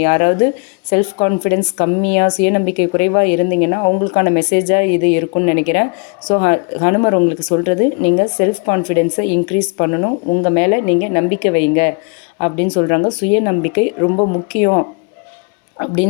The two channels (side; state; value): right; quieter; 35.9 dB